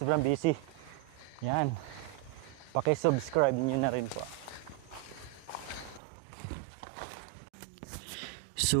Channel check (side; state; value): left; drops out; at 6.0 s